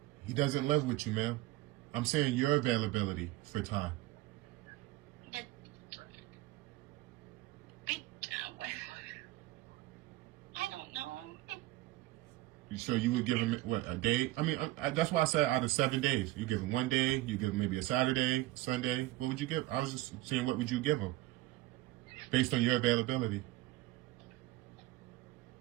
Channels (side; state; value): left; quieter; 17.6 dB